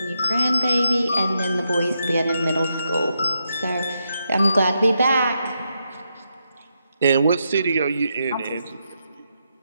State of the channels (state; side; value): inverted; both; correlation -0.83